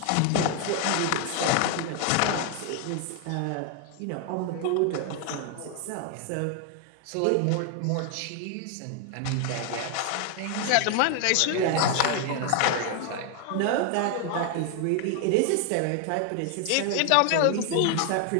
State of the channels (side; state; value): both; different; correlation 0.00